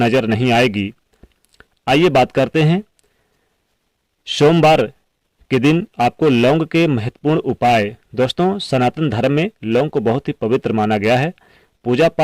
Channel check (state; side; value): identical; both; correlation 1.00